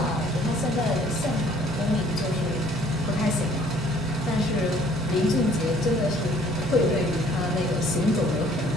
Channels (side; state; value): both; normal; correlation 0.58